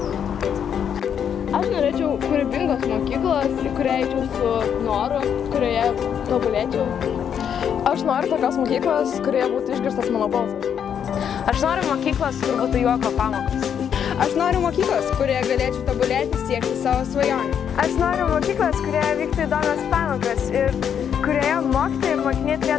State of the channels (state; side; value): quieter; right; 8.3 dB